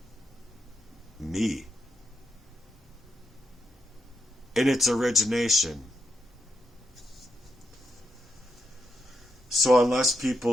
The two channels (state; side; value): normal; both; correlation 0.82